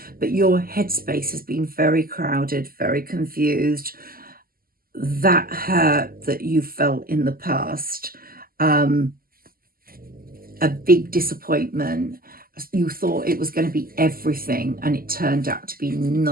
but your headspace has been very crowded, very confused. That hurt that you felt in the past, a big disappointment. You thought it was going to be everything, and it turned out to be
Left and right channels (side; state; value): left; late; 0.42 ms